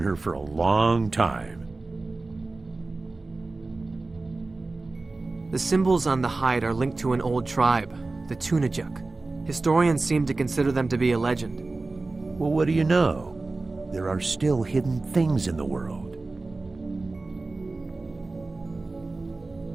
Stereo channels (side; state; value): left; quieter; 3.4 dB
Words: for a long time. The symbols on the hide are linked to an old tribe, the Tunajuk. Historians seem to consider them to be a legend. Well, what do you know? There are still hidden things in the world.